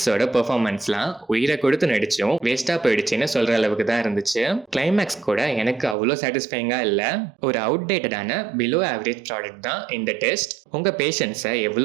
பெர்ஃபார்மன்ஸ்லாம் உயிரை கொடுத்து நடிச்சும் வேஸ்டா போயிடுச்சுன்னு சொல்ற அளவுக்கு தான் இருந்துச்சு. கிளைமேக்ஸ் கூட எனக்கு அவ்வளோ சாட்டிஸ்ஃபைங்கா இல்ல, ஒரு அவுட்டேட்டடான பிலோ ஆவரேஜ் ப்ராடக்ட் தான் இந்த டெஸ்ட். உங்க பேஷன்ஸை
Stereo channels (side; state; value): left; drops out; at 6.0 s